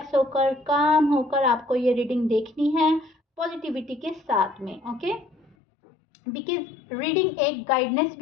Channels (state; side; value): drops out; right; at 5.6 s